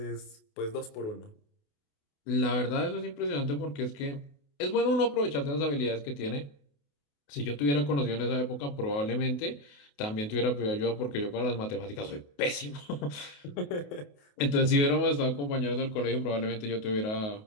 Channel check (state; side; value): late; right; 28 ms